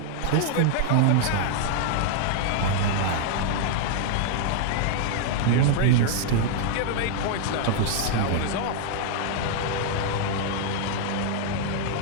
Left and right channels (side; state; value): both; different; correlation 0.00